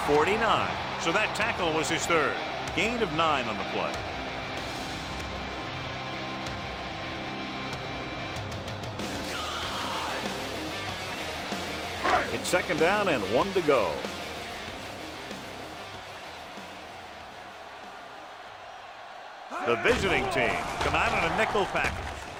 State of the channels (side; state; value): both; identical; correlation 1.00